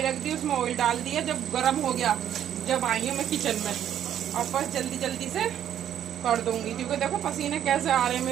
रख दी, उसमें ऑयल डाल दिया। जब गर्म हो गया, जब आई हूँ मैं किचन में, और बस जल्दी जल्दी से कर दूंगी, क्योंकि देखो पसीने कैसे आ रहे हैं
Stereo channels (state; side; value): quieter; left; 10.3 dB